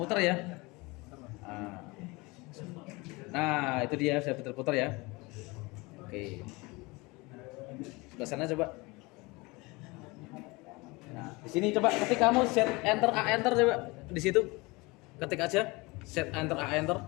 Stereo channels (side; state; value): right; quieter; 24.5 dB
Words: ya. Nah, itu dia sudah putar-putar ya. Oke. Sebelah sana coba. Nah, di sini coba ketik kamu set enter A enter coba di situ. Ketik aja Set enter A enter.